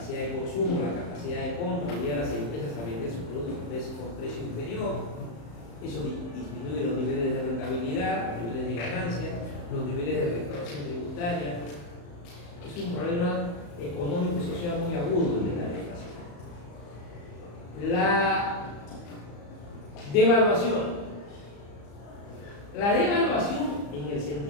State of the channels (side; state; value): right; late; 35 ms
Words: de consumo, la capacidad de compra, obliga a las empresas a vender sus productos con precio inferior. Eso disminuye los niveles de rentabilidad, los niveles de ganancia, los niveles de recaudación tributaria. Es un problema económico y social muy agudo de la deflación. La devaluación. La devaluación, en el